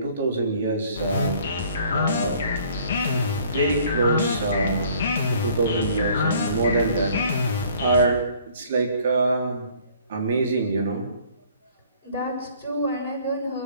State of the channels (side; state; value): both; inverted; correlation -0.56